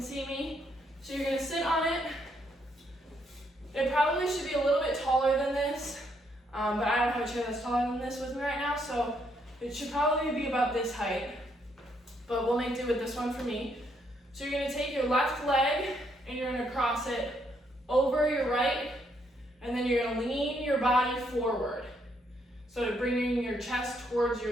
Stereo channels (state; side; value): normal; both; correlation 0.74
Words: see me. So you're gonna sit on it. It probably should be a little bit taller than this. but I don't have a chair that's taller than this with me right now, so it should probably be about this height, but we'll make do with this one for me. So you're gonna take your left leg and you're gonna cross it over your right, and then you're gonna lean your body forward. So bringing your chest towards